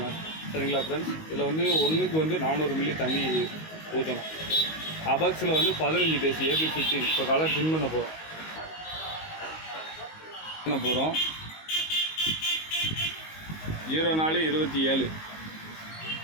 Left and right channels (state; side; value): late; right; 19 ms